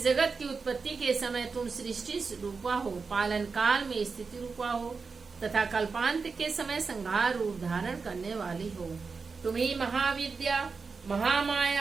जगत की उत्पत्ति के समय तुम सृष्टि रूपा हो, पालन काल में स्थिति रूपा हो तथा कल्पांत के समय संहार रूप धारण करने वाली हो। तुम ही महाविद्या,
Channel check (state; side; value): quieter; left; 4.8 dB